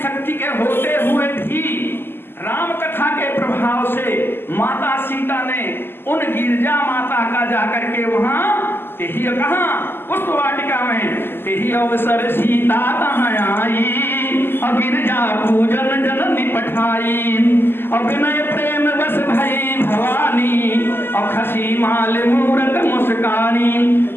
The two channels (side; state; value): right; late; 0.11 ms